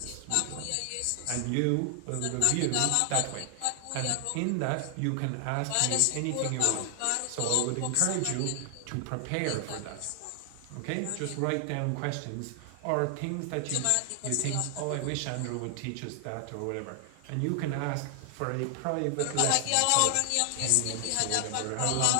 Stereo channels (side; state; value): both; different; correlation 0.00